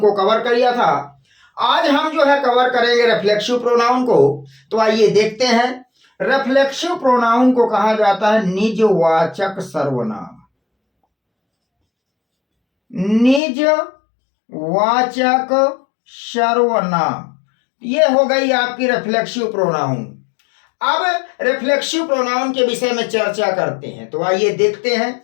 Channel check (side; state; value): right; drops out; at 13.4 s